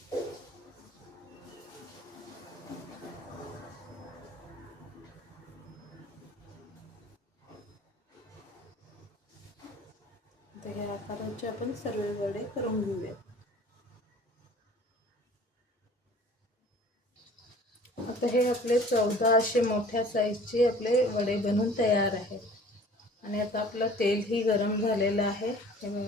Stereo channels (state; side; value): normal; both; correlation 0.48